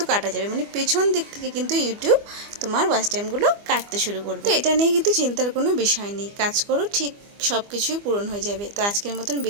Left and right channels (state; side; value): late; left; 25 ms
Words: কাটা যাবে। মানে পেছন দিক থেকে কিন্তু ইউটিউব তোমার ওয়াচ টাইমগুলো কাটতে শুরু করবে। তো এটা নিয়ে কিন্তু চিন্তার কোনো বিষয় নেই, কাজ করো, ঠিক সব কিছুই পূরণ হয়ে যাবে। তো আজকের মতন